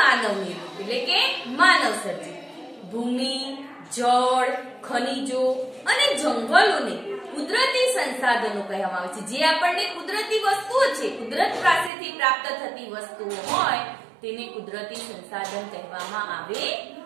નિર્મિત એટલે કે માનવ સર્જિત. ભૂમિ, જળ, ખનિજો અને જંગલોને કુદરતી સંસાધનો કહેવામાં આવે છે. જે આપણને કુદરતી વસ્તુઓ છે, કુદરત પાસેથી પ્રાપ્ત થતી વસ્તુઓ હોય તેને કુદરતી સંસાધન કહેવામાં આવે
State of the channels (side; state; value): left; drops out; at 11.9 s